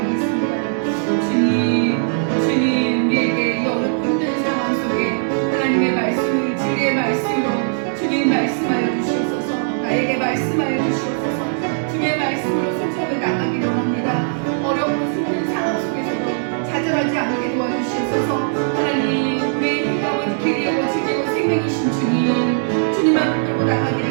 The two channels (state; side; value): silent; left; digital silence